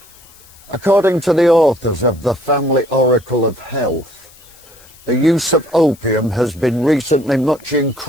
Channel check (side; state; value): left; noise; hiss, 25 dB below the sound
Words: According to the authors of the Family Oracle of Health, the use of opium has been recently much